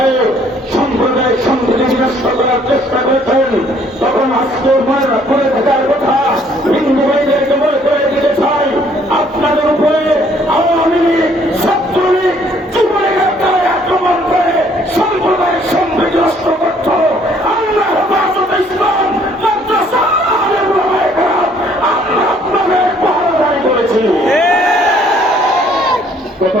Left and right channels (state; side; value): normal; both; correlation 0.62